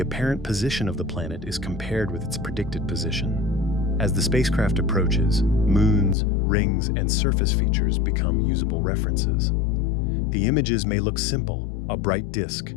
apparent position of the planet is compared with its predicted position. As the spacecraft approaches, moons, rings, and surface features become usable references. The images may look simple, a bright disk,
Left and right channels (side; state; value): right; drops out; at 6.2 s